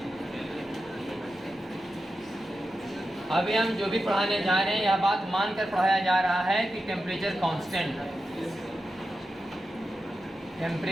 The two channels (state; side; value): normal; both; correlation 0.90